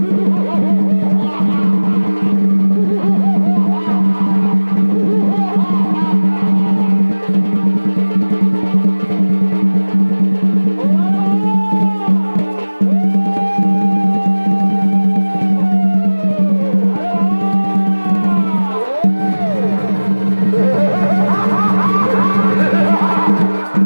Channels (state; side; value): inverted; both; correlation -1.00